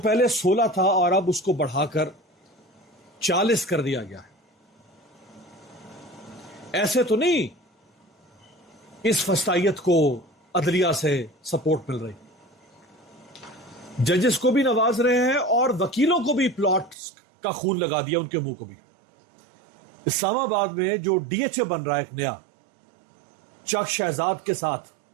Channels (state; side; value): drops out; left; at 16.9 s